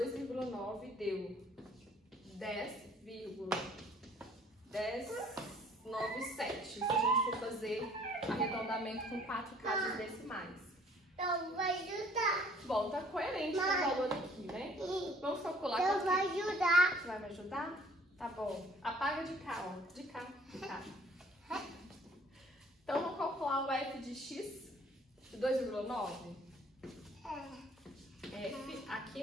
deu 10,1097. Se a gente for fazer arredondamento com 4 casas decimais. Então vai ajudar. Bom, tá coerente com o valor aqui, né? Vamos calcular Então quanto vai ajudar. Você vai me ajudar? Tá bom. Apaga de cá, ó. De cá, de cá. Então, vamos calcular o f de x de 2,9. F,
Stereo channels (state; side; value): normal; both; correlation 0.57